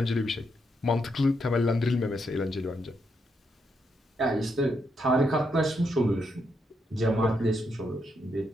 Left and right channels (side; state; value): both; normal; correlation 0.79